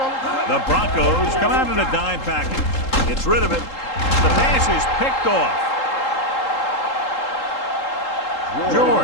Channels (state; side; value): late; right; 3.8 ms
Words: The Broncos come out in a dime package. Gets rid of it. The pass is picked off.